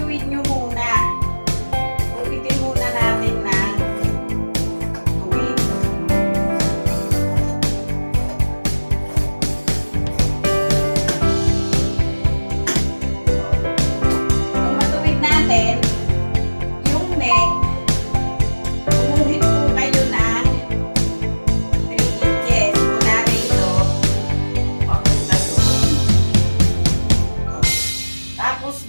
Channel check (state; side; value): inverted; both; correlation -1.00